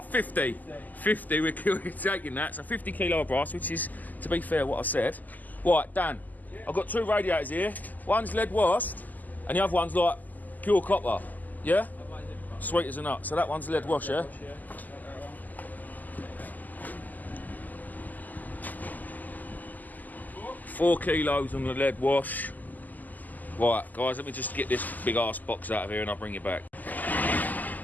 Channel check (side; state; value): right; late; 0.082 ms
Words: 50. 50, we're taking that. So 50 kilo of brass, which is, to be fair, what I said. Right, Dan, I've got two radiators here. One's lead washed and the other one's like pure copper. Yeah? Sweet as a nut. So that one's lead wash, yeah? 4 kilos on the lead wash. Right, guys, let me just get this big ass box out of here and I'll bring it back.